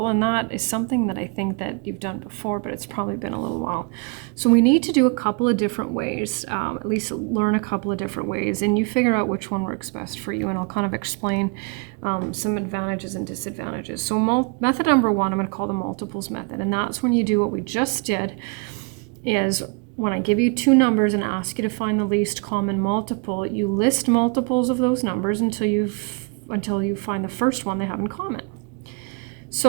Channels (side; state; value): left; quieter; 32.8 dB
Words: and that is something that I think that you've done before, but it's probably been a little while. So we need to do a couple of different ways, at least learn a couple of different ways, and you figure out which one works best for you, and I'll kind of explain some advantages and disadvantages. So method number 1, I'm going to call the multiples method, and that's when you do what we just did, is when I give you 2 numbers and ask you to find the least common multiple, you list multiples of those numbers until you find the first one they have in common.